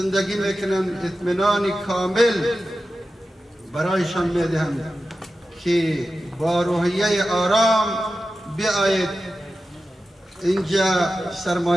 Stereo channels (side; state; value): both; normal; correlation 0.93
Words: میکنند اطمینان کامل برایشان میدهم که با روحیه آرام بیایید اینجا